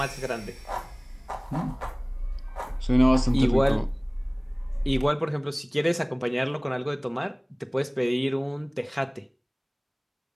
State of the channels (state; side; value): identical; both; correlation 1.00